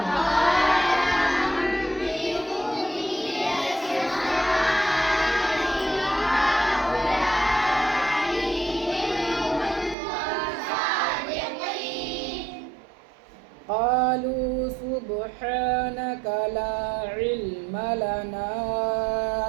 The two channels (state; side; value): drops out; left; at 10.0 s